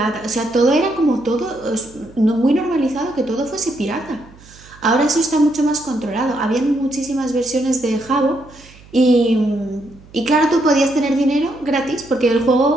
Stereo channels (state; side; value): noise; right; hum, 23 dB below the sound